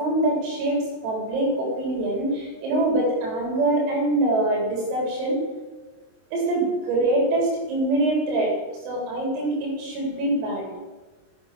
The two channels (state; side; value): late; left; 23 ms